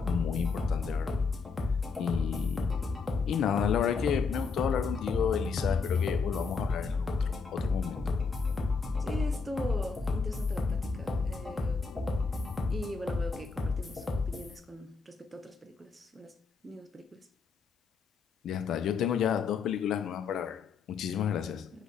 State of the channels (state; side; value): quieter; right; 5.0 dB